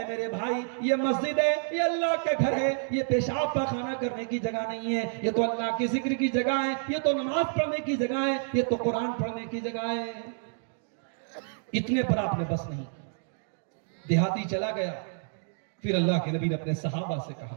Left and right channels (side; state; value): left; silent; digital silence